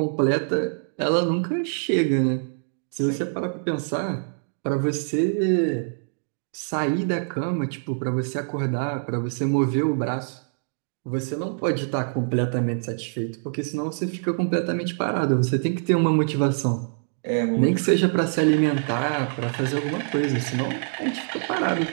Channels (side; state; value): left; silent; digital silence